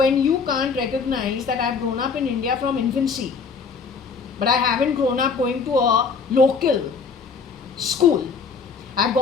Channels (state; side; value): quieter; right; 5.4 dB